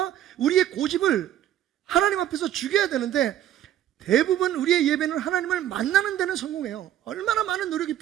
우리의 고집을 하나님 앞에서 죽여야 되는데, 대부분 우리의 예배는 하나님을 만나는 데는 성공해요. 얼마나 많은 노력이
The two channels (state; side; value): quieter; left; 11.7 dB